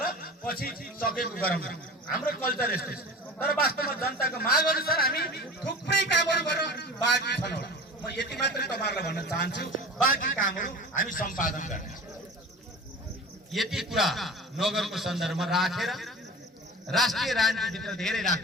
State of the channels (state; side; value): normal; both; correlation 0.37